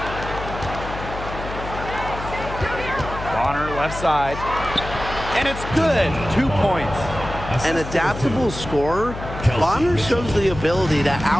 Bonner left side. And it's good. 2 points. An adaptable scorer, Bonner shows the ability to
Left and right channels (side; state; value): left; noise; hum, 9 dB below the sound